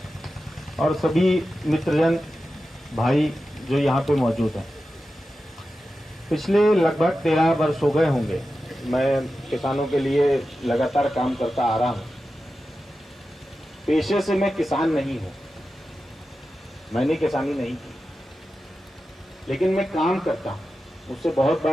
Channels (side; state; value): both; normal; correlation 0.92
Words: और सभी मित्रजन भाई जो यहाँ पे मौजूद हैं। पिछले लगभग 13 वर्ष हो गए होंगे मैं किसानों के लिए लगातार काम करता आ रहा हूँ। पेशे से मैं किसान नहीं हूँ, मैंने किसानी नहीं की, लेकिन मैं काम करता हूँ। मुझसे बहुत